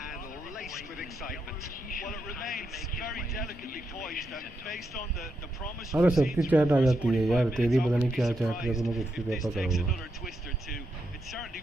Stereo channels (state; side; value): normal; both; correlation 0.83